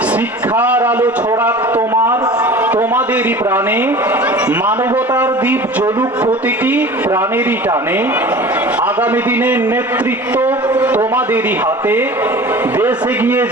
শিক্ষার আলো ছড়াক তোমাদেরই প্রাণে। মানবতার দ্বীপ জ্বলুক প্রতিটি প্রাণেরই টানে। আগামী দিনের নেতৃত্ব তোমাদেরই হাতে। দেশ এগিয়ে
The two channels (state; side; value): normal; both; correlation 0.40